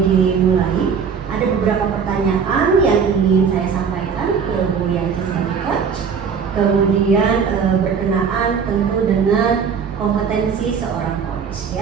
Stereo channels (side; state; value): left; quieter; 6.4 dB